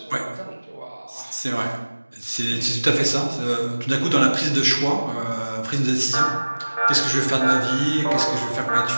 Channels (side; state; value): both; inverted; correlation -1.00